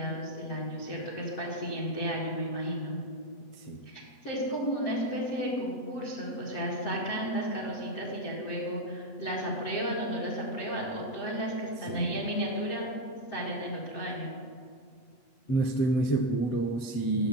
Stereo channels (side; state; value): right; late; 8.2 ms